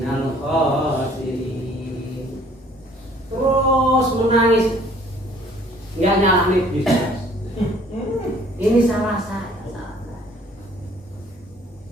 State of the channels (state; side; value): normal; both; correlation 0.57